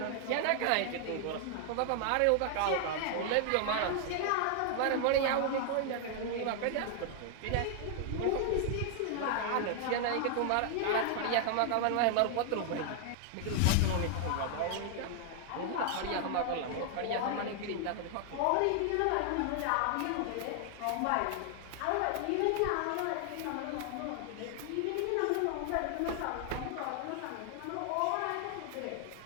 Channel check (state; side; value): different; both; correlation 0.00